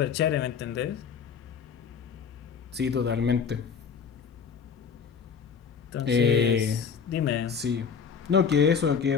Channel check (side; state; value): right; quieter; 6.5 dB